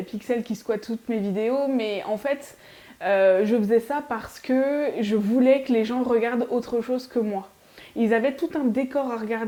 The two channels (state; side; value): identical; both; correlation 1.00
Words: Pixel qui squatte toutes mes vidéos, mais en fait, je faisais ça parce que je voulais que les gens regardent autre chose que moi. Ils avaient tout un décor à